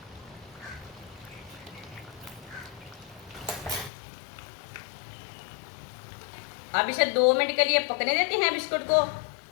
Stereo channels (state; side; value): drops out; right; at 3.9 s